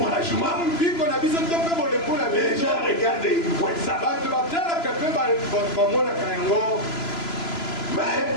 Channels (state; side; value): late; right; 2.9 ms